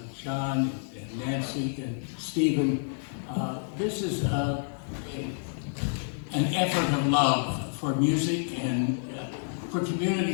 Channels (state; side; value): silent; right; 59 dB below the other